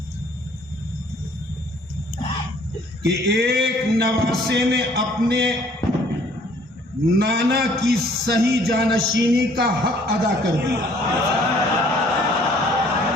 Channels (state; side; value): normal; both; correlation 0.59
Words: कि एक नवासे ने अपने नाना की सही जानशीनी का हक अदा कर दिया।